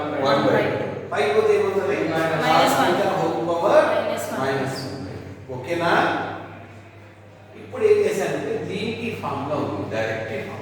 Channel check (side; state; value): both; identical; correlation 1.00